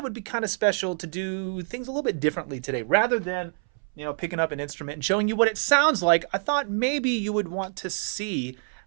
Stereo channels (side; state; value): left; silent; 61 dB below the other